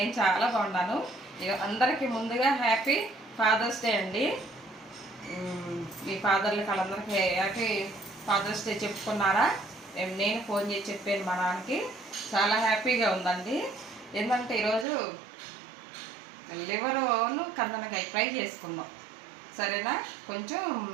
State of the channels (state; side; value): drops out; left; at 14.9 s